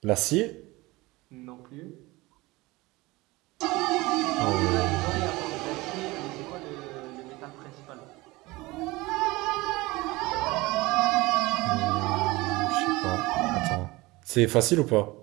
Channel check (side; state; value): left; quieter; 21.4 dB